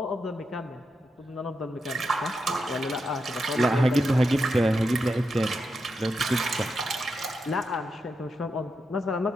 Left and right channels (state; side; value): normal; both; correlation 0.86